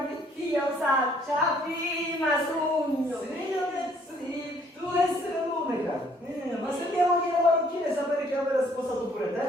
osaccia, prima sogno. Sì, sì, tu essere l'unica. Ma se andiamo dire marocchine sapere che avere sposato pure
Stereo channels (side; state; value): both; normal; correlation 0.63